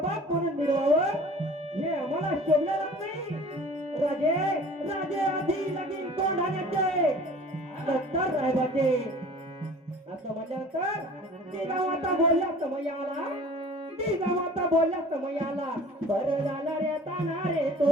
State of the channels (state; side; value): normal; both; correlation 0.45